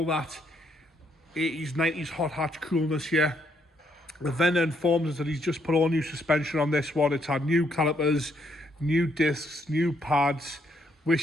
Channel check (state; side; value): normal; both; correlation 0.73